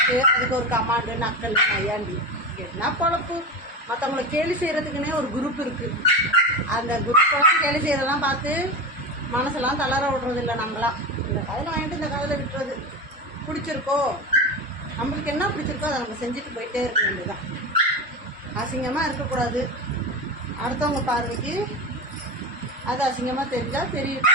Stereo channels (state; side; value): normal; both; correlation 0.22